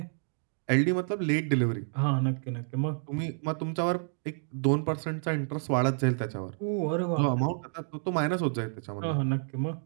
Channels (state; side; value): silent; left; digital silence